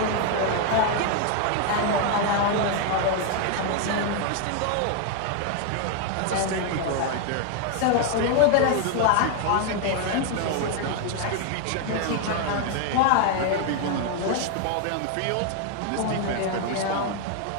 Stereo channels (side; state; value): both; different; correlation 0.00